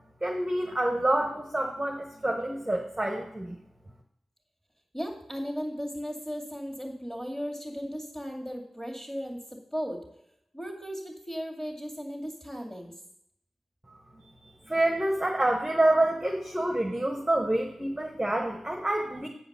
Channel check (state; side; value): normal; both; correlation 0.97